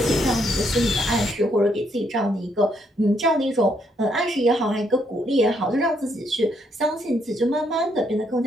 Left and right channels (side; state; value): both; normal; correlation 0.73